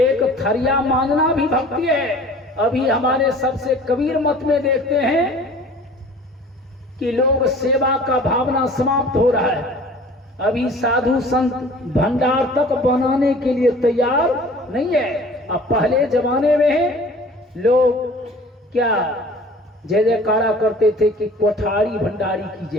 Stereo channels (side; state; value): both; normal; correlation 0.46